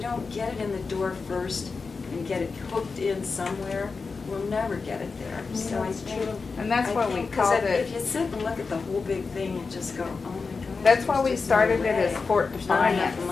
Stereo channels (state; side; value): quieter; right; 4.6 dB